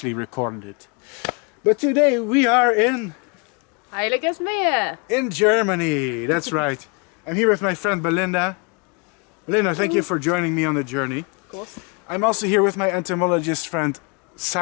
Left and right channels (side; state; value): right; quieter; 34.0 dB